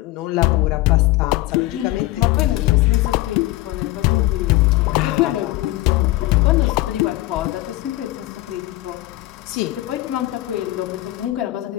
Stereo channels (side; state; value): right; quieter; 17.5 dB